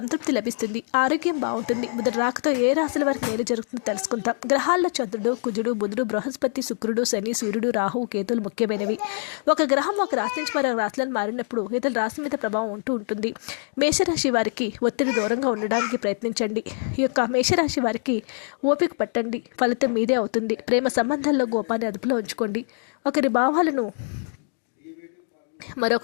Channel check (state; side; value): silent; right; 58 dB below the other